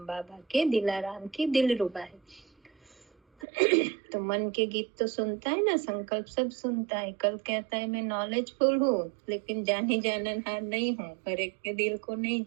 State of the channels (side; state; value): left; drops out; at 3.5 s